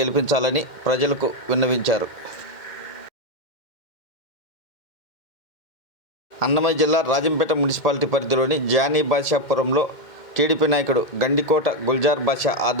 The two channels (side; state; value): right; late; 2.1 ms